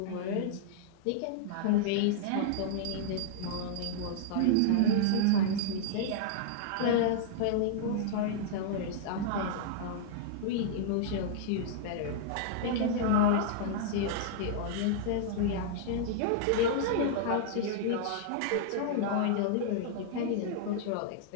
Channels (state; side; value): different; both; correlation -0.01